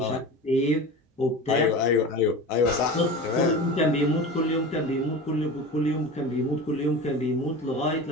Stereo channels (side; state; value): both; normal; correlation 0.31